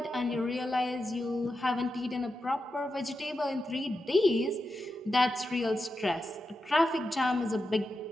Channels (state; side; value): normal; both; correlation 0.89